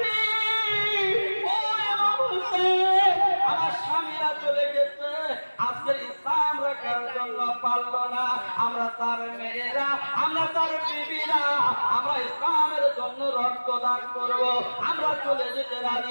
আমার স্বামীরা চলে গেছে, আজকের ইসলাম রাখার জন্য পারল না। আমরা তার মেয়েরা, আমরা তার বিবিরা, আমরা ইসলামের জন্য রক্তদান করব। আমরা চলে যেতে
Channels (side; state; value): both; inverted; correlation -1.00